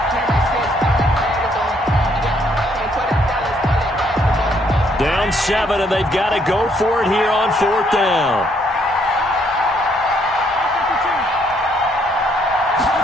Down 7, and they've got to go for it here on fourth down.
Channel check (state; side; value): normal; both; correlation 0.69